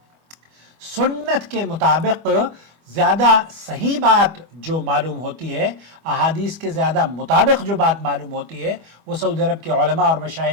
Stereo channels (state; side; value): late; left; 25 ms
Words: سنت کے مطابق زیادہ صحیح بات جو معلوم ہوتی ہے، احادیث کے زیادہ مطابق جو بات معلوم ہوتی ہے، وہ سعودی عرب کے علماء اور